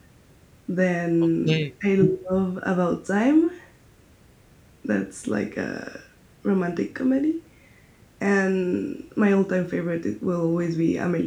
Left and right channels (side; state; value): both; identical; correlation 1.00